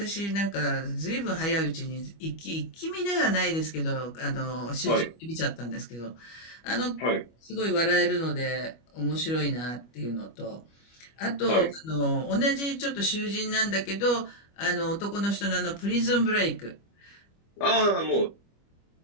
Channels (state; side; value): late; right; 25 ms